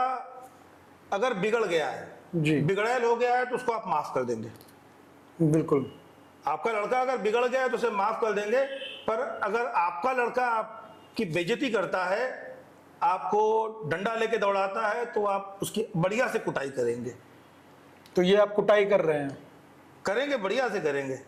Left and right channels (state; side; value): identical; both; correlation 1.00